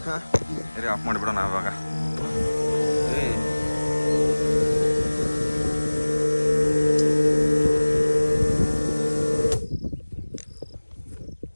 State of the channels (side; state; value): both; inverted; correlation -1.00